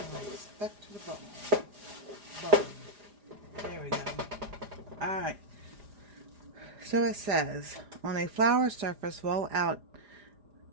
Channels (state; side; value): late; left; 4.9 ms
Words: like stuck to the bowl. There we go. Alright. So it says, on a flour surface, roll out